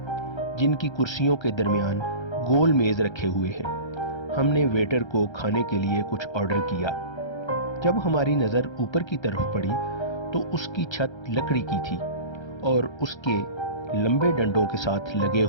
جن کی کرسیوں کے درمیان گول میز رکھے ہوئے ہیں۔ ہم نے ویٹر کو کھانے کے لیے کچھ آرڈر کیا۔ جب ہماری نظر اوپر کی طرف پڑی تو اس کی چھت لکڑی کی تھی اور اس کے لمبے ڈنڈوں کے ساتھ لگے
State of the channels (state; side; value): late; right; 1.3 ms